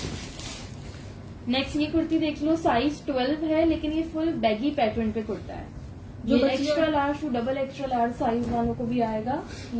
नेक्स्ट ये कुर्ती देख लो, साइज 12 है लेकिन ये फुल बैगी पैटर्न पे कुर्ता है। जो ये बच्चियां- extra large to double extra large size वालों को भी आएगा।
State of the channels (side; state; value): both; identical; correlation 1.00